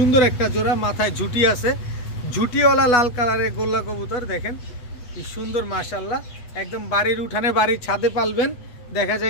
একটা জোড়া। মাথায় ঝুটি আছে, ঝুটিওয়ালা লাল কালারের গোল্লা কবুতর। দেখেন কি সুন্দর মাশাআল্লাহ। একদম বাড়ির উঠানে, বাড়ির ছাদে পালবেন, দেখা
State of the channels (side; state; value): right; late; 8.3 ms